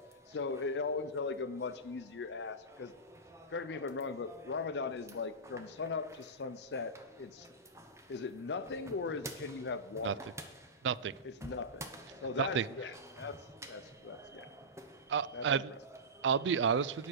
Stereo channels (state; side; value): normal; both; correlation -0.17